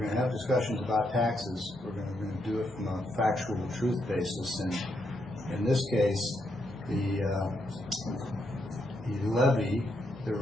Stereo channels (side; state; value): both; normal; correlation 0.79